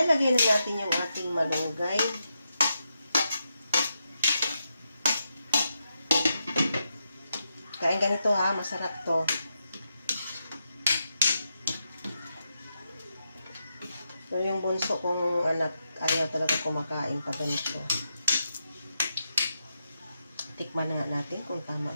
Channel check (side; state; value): both; inverted; correlation -0.85